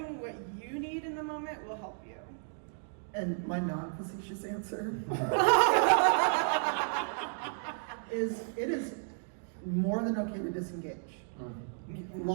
what you need in the moment will help you. And my non-facetious answer is it is more than okay to disengage.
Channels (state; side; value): silent; left; digital silence